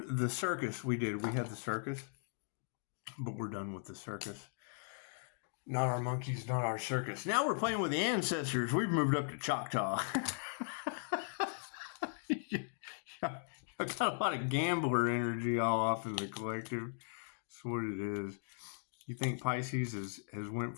the circus. We had the circus, but we're done with the circus. Not our monkeys, not our circus. Now we're playing with the ancestors. We've moved up to Choctaw. I've got a lot of gambler energy all off in the collective. That's what it is. You think Pisces has went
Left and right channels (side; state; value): right; silent; digital silence